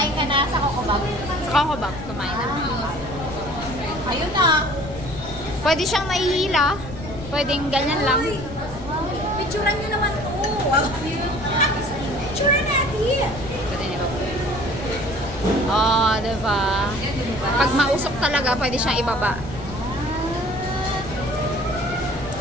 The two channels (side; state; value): left; noise; rumble, 12 dB below the sound